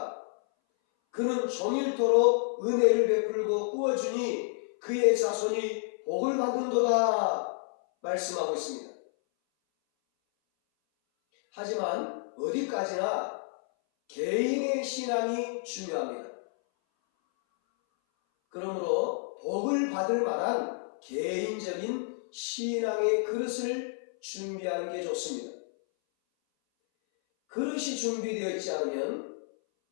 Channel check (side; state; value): right; silent; 58 dB below the other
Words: 그는 종일토록 은혜를 베풀고 꾸어주니 그의 자손이 복을 받는도다 말씀하고 있습니다. 하지만 어디까지나 개인의 신앙이 중요합니다. 그러므로 복을 받을 만한 개인적인 신앙의 그릇을 준비하는 게 좋습니다. 그릇이 준비되어 있지 않으면